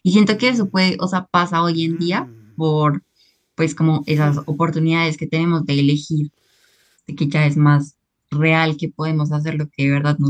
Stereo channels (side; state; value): both; identical; correlation 1.00